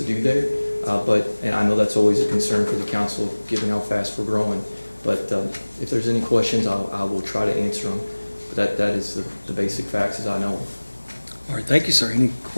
do there. And I know that's always a concern for the council, given how fast we're growing. But if there's any questions, I will try to answer them. But that is the basic facts as I know them. All right, thank you, sir. Any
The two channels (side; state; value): both; inverted; correlation -1.00